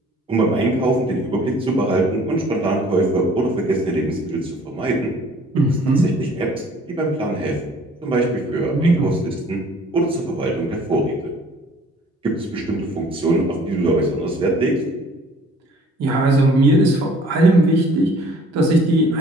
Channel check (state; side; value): normal; both; correlation 0.54